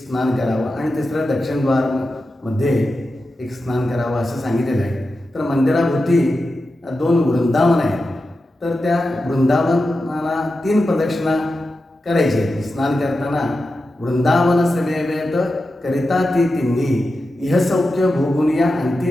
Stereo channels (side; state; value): both; normal; correlation 0.91